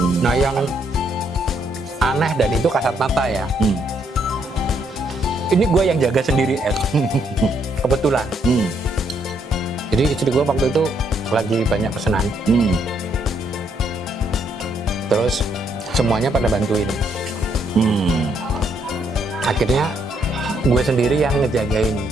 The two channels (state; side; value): normal; both; correlation 0.72